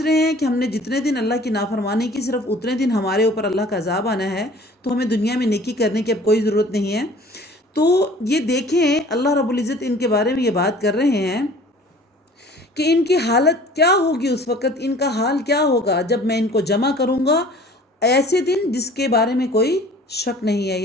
رہے ہیں کہ ہم نے جتنے دن اللہ کی نافرمانی کی صرف اتنے دن ہمارے اوپر اللہ کا عذاب آنا ہے، تو ہمیں دنیا میں نیکی کرنے کی اب کوئی ضرورت نہیں ہے۔ تو یہ دیکھیں اللہ رب العزت ان کے بارے میں یہ بات کر رہے ہیں کہ ان کی حالت کیا ہوگی، اس وقت ان کا حال کیا ہوگا جب میں ان کو جمع کروں گا ایسے دن جس کے بارے میں کوئی شک نہیں ہے،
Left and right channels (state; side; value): normal; both; correlation 0.49